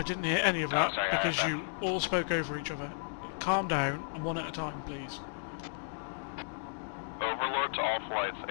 didn't hear any of that sorry, because I- you all spoke over each other. Calm down and one at a time, please. Overlord to all flights,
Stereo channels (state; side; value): silent; right; digital silence